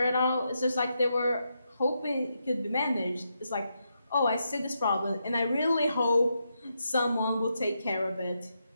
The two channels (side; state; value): both; inverted; correlation -0.83